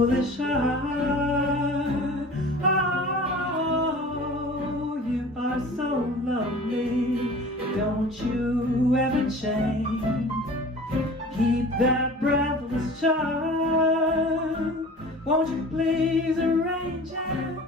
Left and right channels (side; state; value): both; normal; correlation 0.42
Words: heart. Oh, you are so lovely, don't you ever change. Keep that breathless charm, won't you please arrange it,